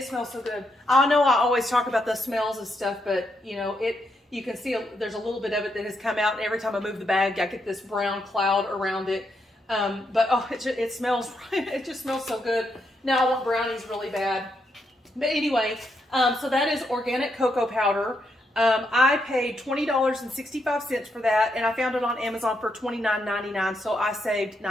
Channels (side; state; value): both; normal; correlation 0.79